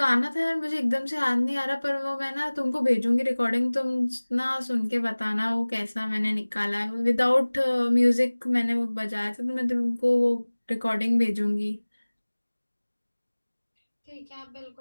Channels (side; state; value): both; inverted; correlation -1.00